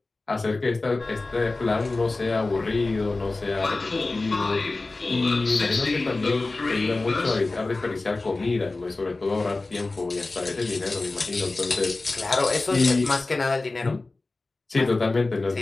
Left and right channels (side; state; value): right; quieter; 3.3 dB